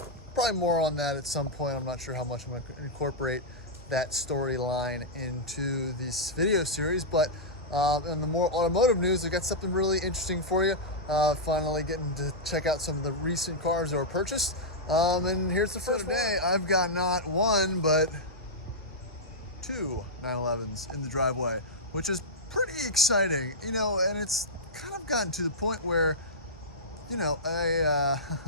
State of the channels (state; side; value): normal; both; correlation -0.09